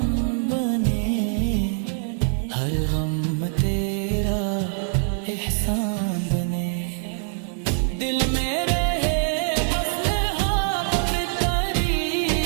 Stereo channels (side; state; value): left; silent; digital silence